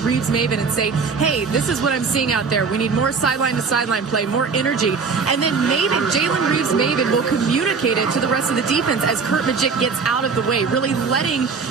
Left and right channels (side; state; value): left; quieter; 5.1 dB